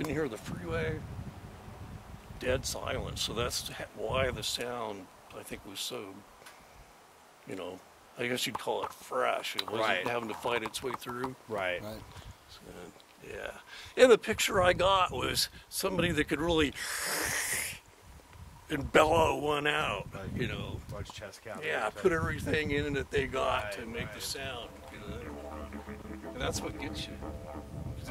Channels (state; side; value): identical; both; correlation 1.00